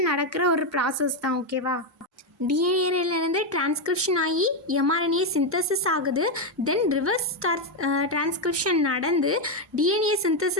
நடக்கிற ஒரு ப்ராசஸ் தான். ஓகேவா? டிஎன்ஏலேருந்து டிரான்ஸ்கிரிப்ஷன் ஆகி எம்ஆர்என்ஏ சிந்தசிஸ் ஆகுது. தென் ரிவர்ஸ் டிரான்ஸ்கிரிப்ஷன் நடந்து டிஎன்ஏ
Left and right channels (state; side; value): normal; both; correlation 0.06